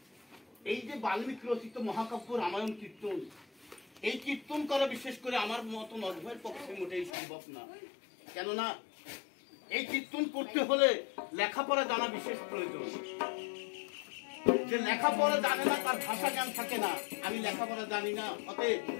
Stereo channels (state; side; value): drops out; right; at 7.1 s